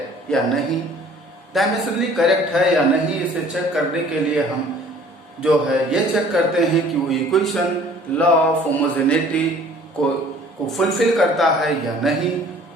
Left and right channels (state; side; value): normal; both; correlation 0.52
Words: या नहीं। डायमेंशनली करेक्ट है या नहीं, इसे चेक करने के लिए हम जो है ये चेक करते हैं कि वो इक्वेशन लॉ ऑफ होमोजेनिटी को फुलफिल करता है या नहीं।